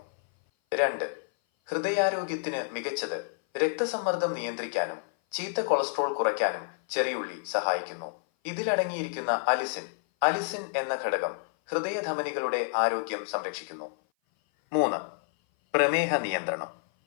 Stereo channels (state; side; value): silent; right; 56 dB below the other